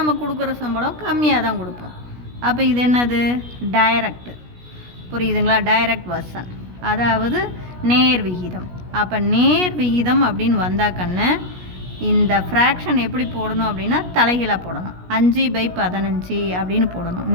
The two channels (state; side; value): late; left; 17 ms